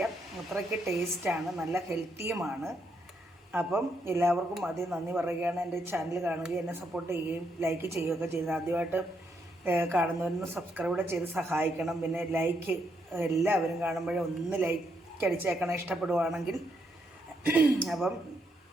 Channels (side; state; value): both; normal; correlation 0.77